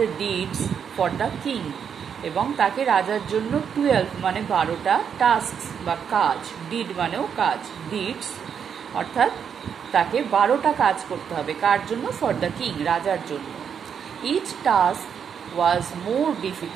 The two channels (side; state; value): left; quieter; 7.5 dB